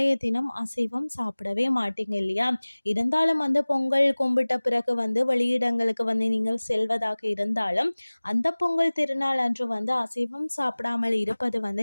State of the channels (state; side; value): inverted; both; correlation -1.00